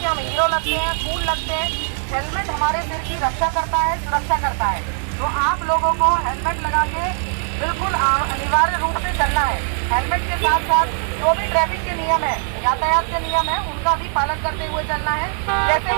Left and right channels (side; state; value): left; silent; 56 dB below the other